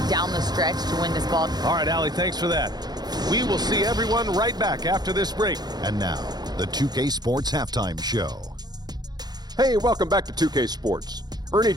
down the stretch to win this ball? All right, Allie, thanks for that. We will see everyone right back after this break. And now, the 2K Sports Halftime Show. Hey, welcome back to 2K Sports. Ernie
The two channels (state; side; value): late; left; 0.20 ms